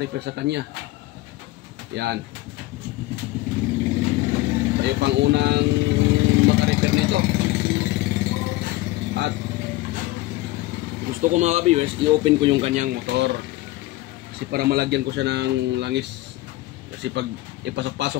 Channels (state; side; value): quieter; right; 18.1 dB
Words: sa kanya. Yan. Tayo pang unang maka-repair nito. At gusto ko mga ka-viewers, i-open ko yung kanyang motor. Kasi para malagyan ko siya ng langis. Kasi pag